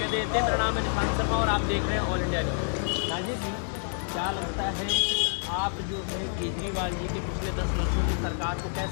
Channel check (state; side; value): silent; right; digital silence